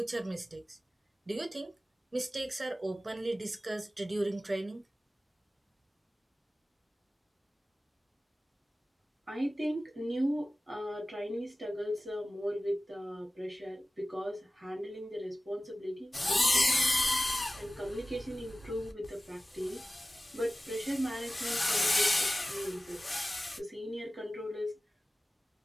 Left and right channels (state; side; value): normal; both; correlation 0.97